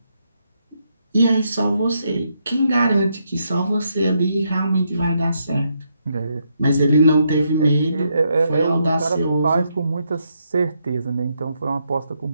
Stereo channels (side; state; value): both; inverted; correlation -0.78